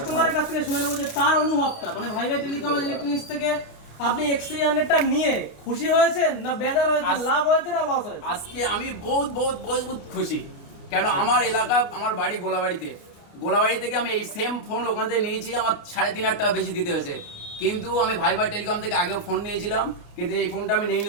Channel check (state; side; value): late; right; 29 ms